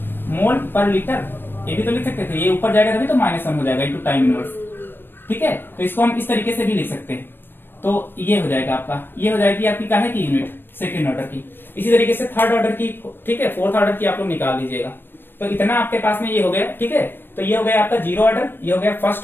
मोल पर लीटर, ये भी तो लिख सकते थे, ये ऊपर जाएगा तभी तो -1 हो जाएगा इंटू टाइम इनवर्स, ठीक है। तो इसको हम इस तरीके से भी लिख सकते हैं, तो ये हो जाएगा आपका, ये हो जाएगी आपकी काहे की यूनिट, सेकंड ऑर्डर की। इसी तरीके से थर्ड ऑर्डर की, ठीक है, फोर्थ ऑर्डर की आप लोग निकाल लीजिएगा। तो इतना आपके पास में ये हो गया, ठीक है। तो ये हो गया आपका 0 ऑर्डर, ये हो गया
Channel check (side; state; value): right; late; 0.097 ms